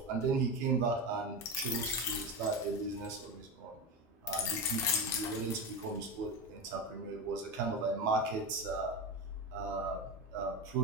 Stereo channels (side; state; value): both; normal; correlation 0.20